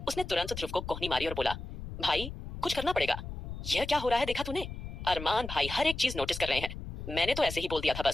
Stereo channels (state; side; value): noise; left; rumble, 9 dB below the sound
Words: उसने तुरंत ध्रुव को कोहनी मारी और बोला, भाई कुछ करना पड़ेगा। यह क्या हो रहा है, देखा तूने? अरमान भाई हर एक चीज नोटिस कर रहे हैं। मैंने तो ऐसे ही बोल दिया था